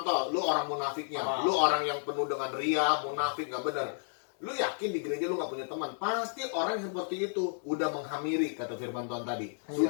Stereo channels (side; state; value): right; silent; 57 dB below the other